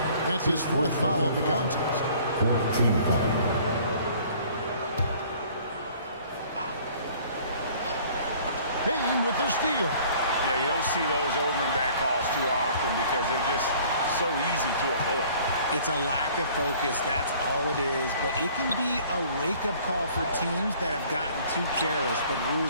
That's his 4th foul of the contest. 14 foul. Bain with the steal. Yeah, you don't see those over and back calls too often because they're just so easy to avoid. It's a lack of focus. That's all it is. But it can be a wake-up call for teams that have gotten too careless, but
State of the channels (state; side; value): inverted; both; correlation -0.53